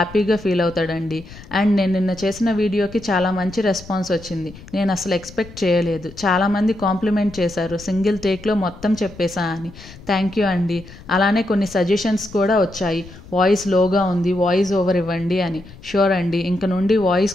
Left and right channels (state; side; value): noise; left; rumble, 18 dB below the sound